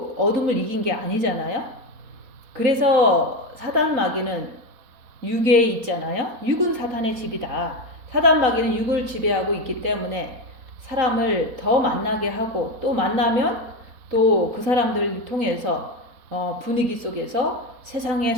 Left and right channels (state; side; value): late; left; 3.9 ms